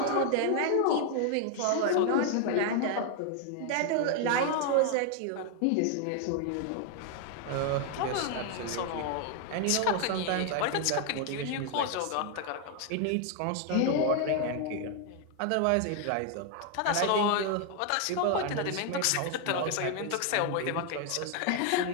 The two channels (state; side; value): different; both; correlation 0.00